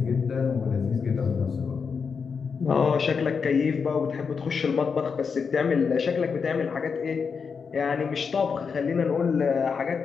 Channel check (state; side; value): quieter; right; 5.8 dB